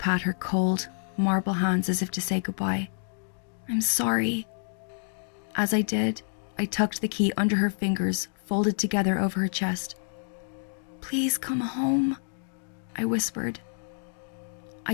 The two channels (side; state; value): right; silent; digital silence